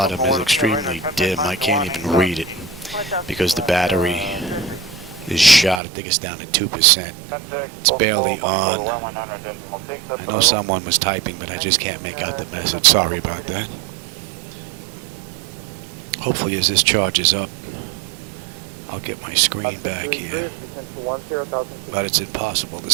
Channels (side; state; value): left; drops out; at 5.8 s